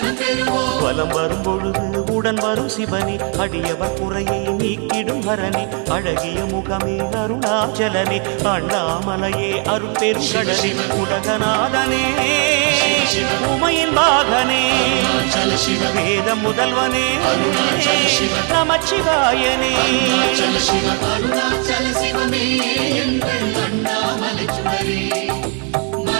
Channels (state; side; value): quieter; left; 39.5 dB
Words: பெறுவோம். வலம் வரும் பொழுது உடன் வரும் சிவனே, அடியவர் குறையை நீக்கிடும் ஹரனே, அழகிய முகமே அருணாச்சலனே, அண்ணாமலையே அருள் பெரும் கடலே, உலகநாதனே உமையின் பாகனே, வேத முதல்வனே நமச்சிவாயனே. அருணாச்சல சிவமே எங்கள் அண்ணாமலை சுடரே,